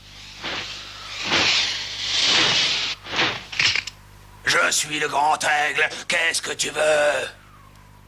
Je suis le grand aigle. Qu'est-ce que tu veux?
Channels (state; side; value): identical; both; correlation 1.00